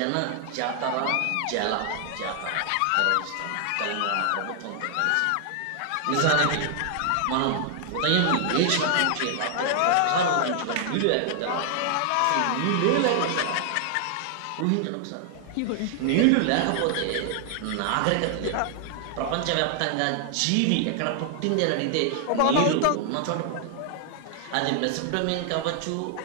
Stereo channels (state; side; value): different; both; correlation 0.00